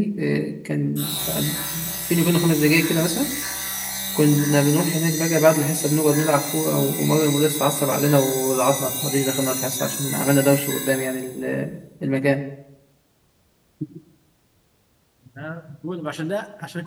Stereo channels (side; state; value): both; identical; correlation 1.00